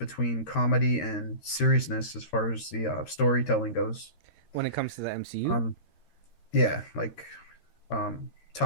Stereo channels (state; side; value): late; right; 13 ms